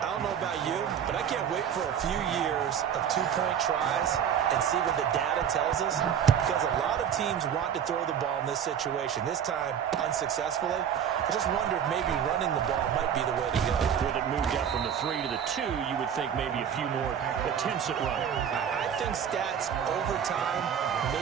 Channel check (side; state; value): left; quieter; 8.5 dB